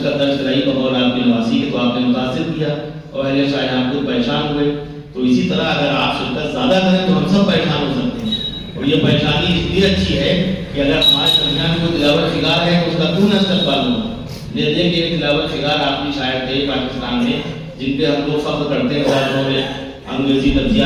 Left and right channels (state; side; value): identical; both; correlation 1.00